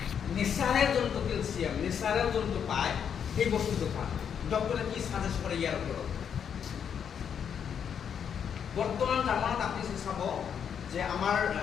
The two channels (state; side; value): quieter; right; 7.8 dB